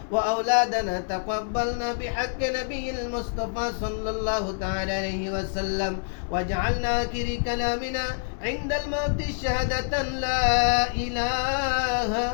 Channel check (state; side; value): silent; right; digital silence